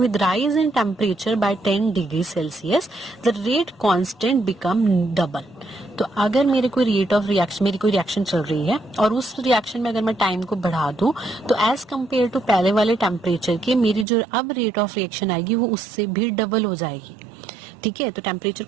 rise in temperature by 10 degree Celsius the rate constant become double. तो अगर मेरी कोई रिएक्शन चल रही है और उस रिएक्शन में अगर मैं टाइम को बढ़ा दूं तो एज कंपेयर टू पहले वाले टेम्परेचर के मेरी जो अब रेट ऑफ रिएक्शन आएगी वो उससे भी डबल हो जाएगी। ठीक है, तो टेम्परेचर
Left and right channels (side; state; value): left; drops out; at 14.1 s